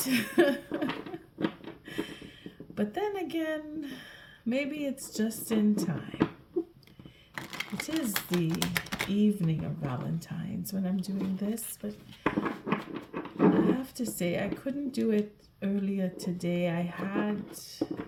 But then again, maybe it's just in time. It is the evening of Valentine's when I'm doing this, but I have to say I couldn't do it earlier today. I had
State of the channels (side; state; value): both; identical; correlation 1.00